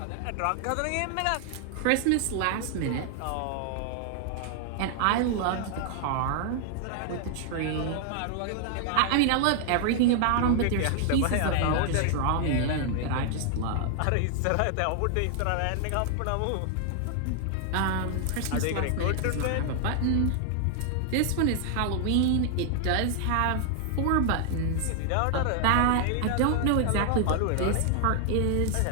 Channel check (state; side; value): different; both; correlation 0.00